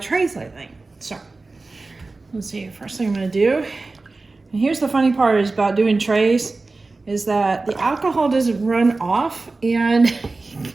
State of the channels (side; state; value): left; quieter; 3.5 dB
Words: trays lately. So, let's see, first thing I'm gonna do, and here's the funny part is about doing trays, is that the alcohol doesn't run off and